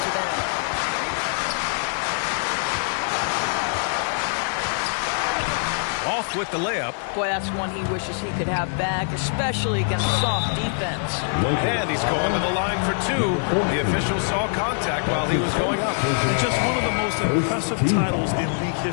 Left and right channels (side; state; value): right; silent; digital silence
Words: end. Off with the layup. Boy, that's one he wishes he could have back, especially against soft defense. And he's going to the line for 2. The official saw contact while he was going up. And just one of the most impressive titles in league